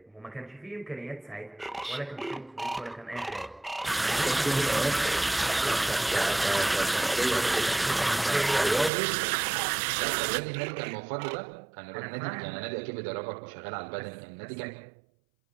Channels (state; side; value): drops out; left; at 8.9 s